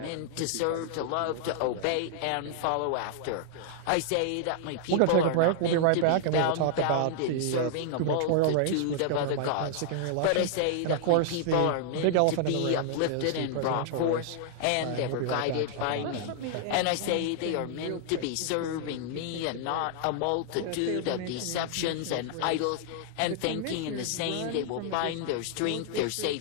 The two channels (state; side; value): different; both; correlation 0.00